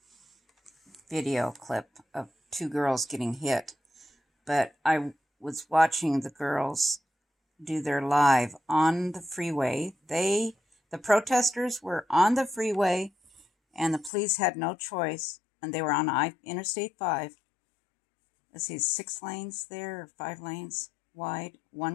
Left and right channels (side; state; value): right; drops out; at 14.1 s